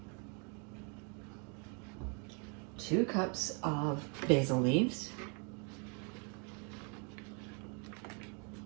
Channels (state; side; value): quieter; left; 36.8 dB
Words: 2 cups of basil leaves.